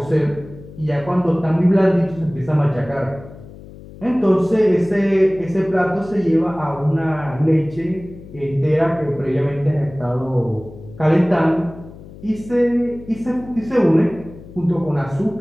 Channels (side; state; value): left; noise; hum, 17 dB below the sound